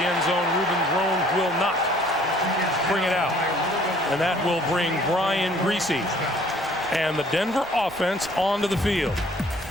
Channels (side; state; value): both; normal; correlation 0.57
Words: zone. Ruben Rome will not bring it out. And that will bring Brian Griese and the Denver offense onto the field.